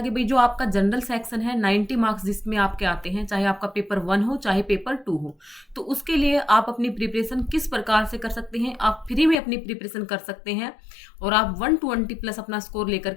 कि भाई जो आपका जनरल सेक्शन है 90 मार्क्स जिसमें आपके आते हैं, चाहे आपका पेपर 1 हो चाहे पेपर 2 हो, तो उसके लिए आप अपनी प्रिपरेशन किस प्रकार से कर सकते हैं। आप फ्री में अपनी प्रिपरेशन कर सकते हैं और आप 120 प्लस अपना स्कोर लेकर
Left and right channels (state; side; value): drops out; right; at 9.4 s